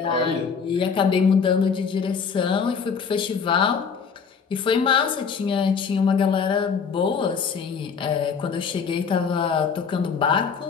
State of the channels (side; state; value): right; quieter; 6.0 dB